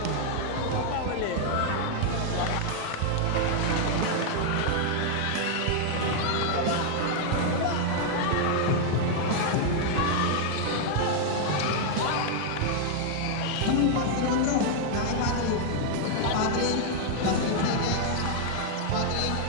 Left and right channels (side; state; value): both; different; correlation 0.00